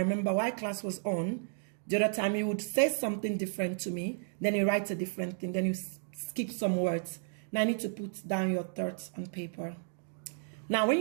while class was on, the other time you would say something different to me, then you write a different thing, then you skip some words. Now I need to put down your thoughts on paper. Now when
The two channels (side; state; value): left; silent; digital silence